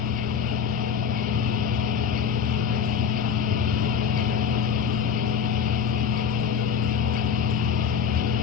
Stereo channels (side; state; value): right; quieter; 7.0 dB